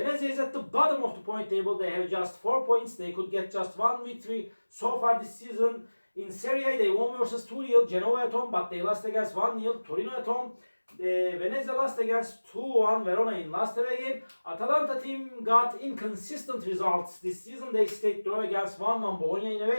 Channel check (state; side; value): inverted; both; correlation -1.00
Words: is at the bottom of the point table. They have just 4 points. They could get just 1 victory so far this season. In Serie, they won versus 2-0 Genoa at home, but they lost against 1-0 Torino at home. Venezia lost against 2-1 Verona in last away game. Atalanta team got inconsistent results this season. They stayed draw against 1-1 Bologna in